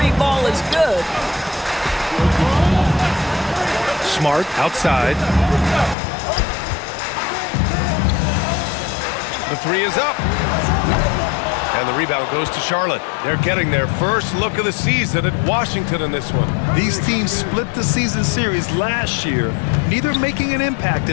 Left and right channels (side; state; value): right; drops out; at 6.0 s